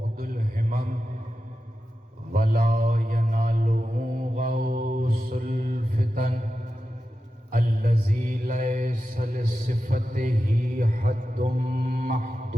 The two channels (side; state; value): both; normal; correlation 0.92